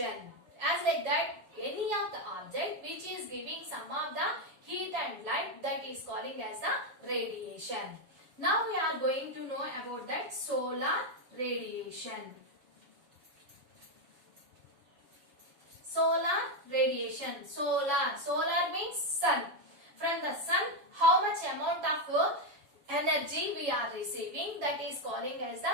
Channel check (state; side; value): late; left; 7.1 ms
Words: As like that, any of the object which is giving some of the heat and light, that is calling as the radiation. Now we are going to know about that solar radiation. Solar radiation. Solar means sun. From the sun, how much amount of energy we are receiving, that is calling as